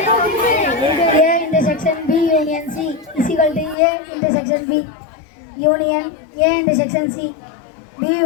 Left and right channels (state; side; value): drops out; right; at 3.8 s